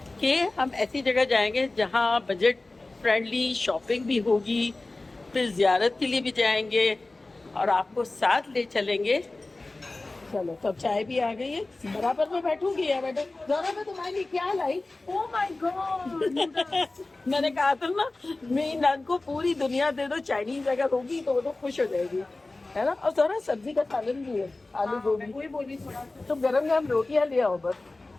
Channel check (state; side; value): quieter; right; 3.1 dB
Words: कि हम ऐसी जगह जाएंगे जहाँ बजट फ्रेंडली शॉपिंग भी होगी, फिर जियारत के लिए भी जाएंगे और आपको साथ ले चलेंगे। चलो, सब चाय भी आ गई है, बराबर में बैठूंगी यार। बेटा जरा मैं तुम्हारे लिए क्या लाई। ओह माय गॉड मैंने कहा था ना, मेरी नन को पूरी दुनिया दे दो, चाइनीज अगर होगी तो वो तो खुश हो जाएगी, है ना। और जरा सब्जी का सालन भी है, आलू गोभी। वही बोली थोड़ा तो गरम गरम रोटियां ले आओ बस।